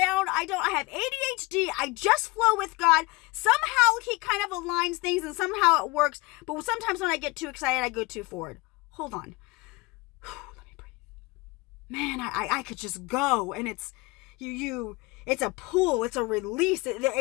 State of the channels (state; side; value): quieter; right; 23.8 dB